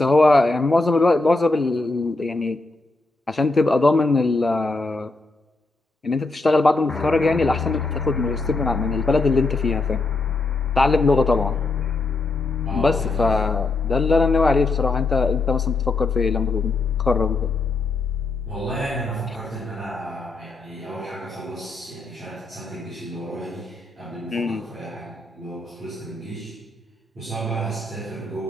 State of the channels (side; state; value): right; quieter; 3.2 dB